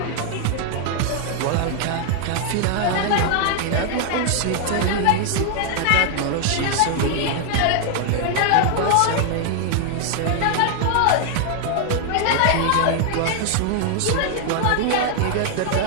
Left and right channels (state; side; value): different; both; correlation 0.00